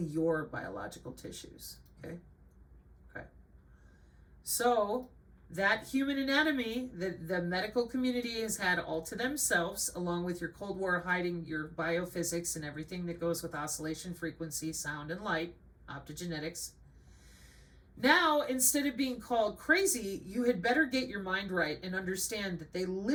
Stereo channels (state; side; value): identical; both; correlation 1.00